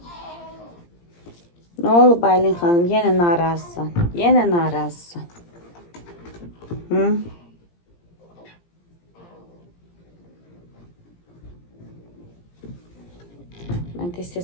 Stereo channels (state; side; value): late; right; 17 ms